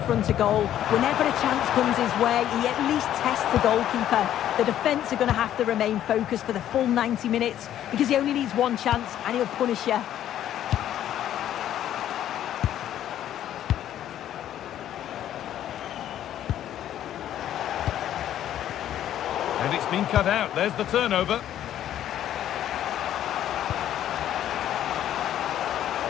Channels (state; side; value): quieter; right; 11.4 dB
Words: of goal. Whenever a chance comes his way, he at least tests the goalkeeper. The defence are going to have to remain focused for the full 90 minutes because he only needs one chance and he'll punish you. And it's been cut out. There's the turnover.